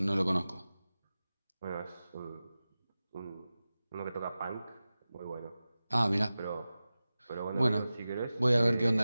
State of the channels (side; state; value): both; inverted; correlation -0.96